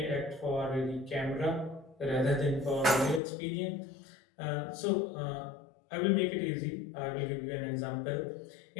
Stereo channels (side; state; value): right; drops out; at 3.2 s